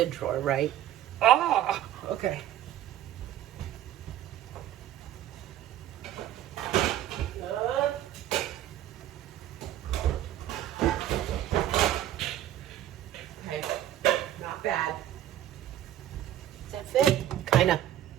drawer, right? Ah, okay. Bad. Does that fit? Kinda.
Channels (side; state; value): left; quieter; 12.1 dB